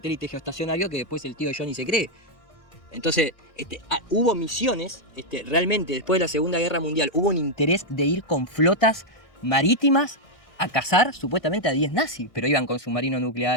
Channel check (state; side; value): late; right; 1.6 ms